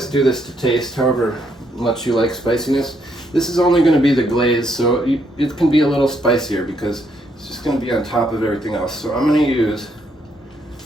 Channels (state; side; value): normal; both; correlation 0.74